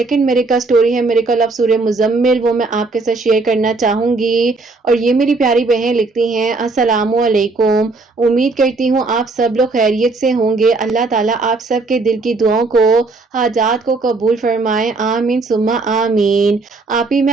میریکل سٹوری ہے میریکل آف سورہ مزمل, وہ میں آپ کے ساتھ شیئر کرنا چاہوں گی. اور یہ میری پیاری بہن لکھتی ہیں, السلام علیکم, امید کرتی ہوں آپ سب لوگ خیریت سے ہوں گے. اللہ تعالیٰ آپ سب کے دل کی دعاؤں کو, حاجات کو قبول فرمائے. آمین ثم آمین. آپ ہی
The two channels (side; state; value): left; quieter; 3.7 dB